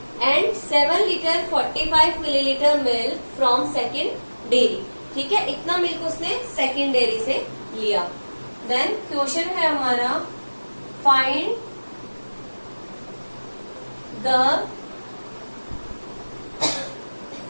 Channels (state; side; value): inverted; both; correlation -1.00